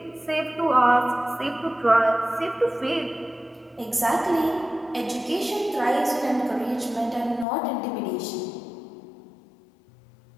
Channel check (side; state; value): right; drops out; at 7.5 s